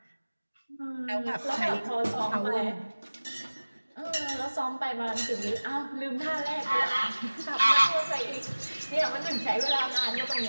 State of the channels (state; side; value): inverted; both; correlation -1.00